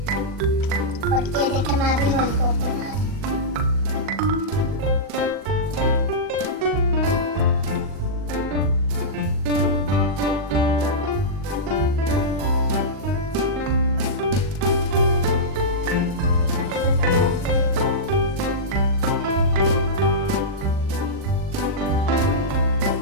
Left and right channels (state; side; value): late; left; 40 ms